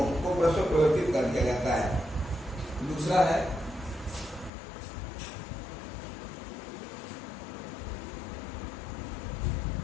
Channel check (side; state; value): right; drops out; at 4.5 s